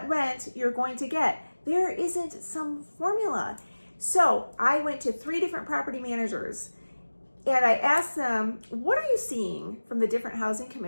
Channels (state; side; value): inverted; both; correlation -1.00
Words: rent you're going to get. There isn't some formula. So I went to 3 different property managers and I asked them, what are you seeing from the different housing